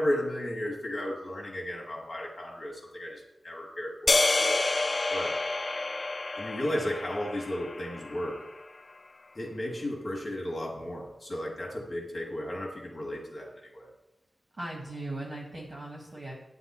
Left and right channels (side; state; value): both; normal; correlation 0.96